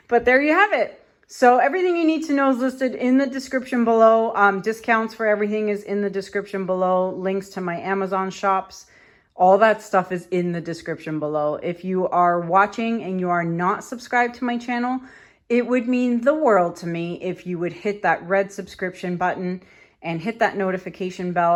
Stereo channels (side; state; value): both; identical; correlation 1.00